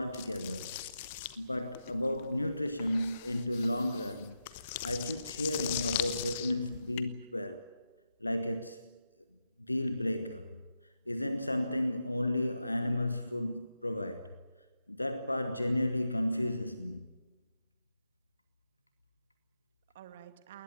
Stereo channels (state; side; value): inverted; both; correlation -0.87